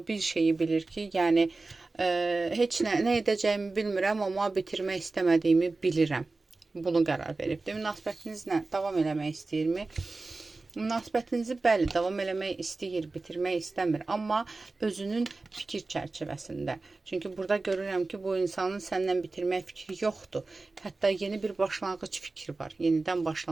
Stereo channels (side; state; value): left; quieter; 3.5 dB